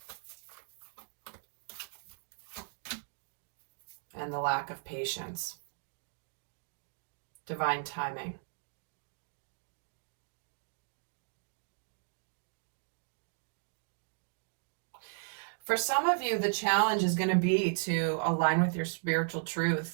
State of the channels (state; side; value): silent; left; digital silence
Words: And the lack of patience. Divine timing. For some of you, the challenge is going to be to align with your spiritual